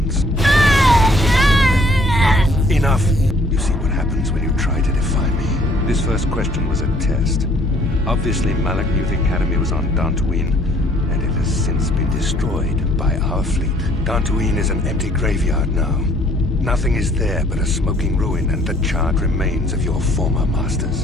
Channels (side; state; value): both; normal; correlation 0.60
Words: Enough! You see what happens when you try to defy me. This first question was a test. Obviously, Malik knew the Academy was on Dantooine, and it has since been destroyed by our fleet. Dantooine is an empty graveyard now. Nothing is there but a smoking ruin and the charred remains of your former